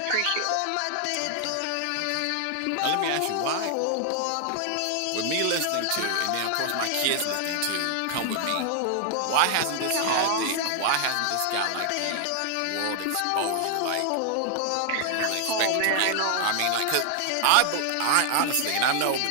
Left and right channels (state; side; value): different; both; correlation 0.00